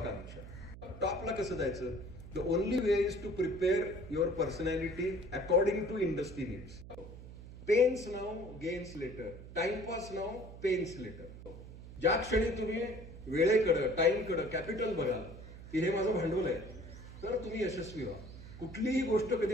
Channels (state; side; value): noise; right; hum, 14 dB below the sound